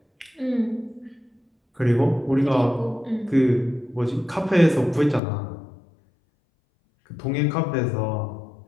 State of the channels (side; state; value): right; drops out; at 5.2 s